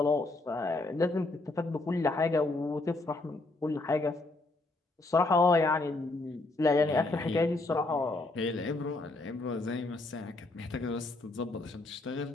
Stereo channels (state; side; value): quieter; right; 3.1 dB